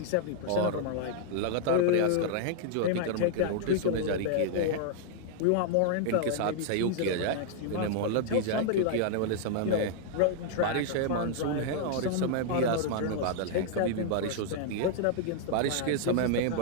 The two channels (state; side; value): different; both; correlation -0.01